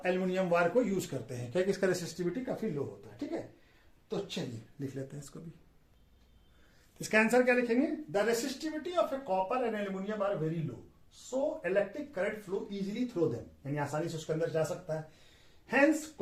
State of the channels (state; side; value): identical; both; correlation 1.00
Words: एल्यूमिनियम वायर को यूज करते हैं, क्योंकि इसका रेसिस्टिविटी काफी लो होता है, ठीक है। तो चलिए लिख लेते हैं इसको भी। इसका आंसर क्या लिखेंगे, the resistivity of a copper and aluminium are very low, so electric current flow easily through them, यानी आसानी से उसके अंदर जा सकता है। Hence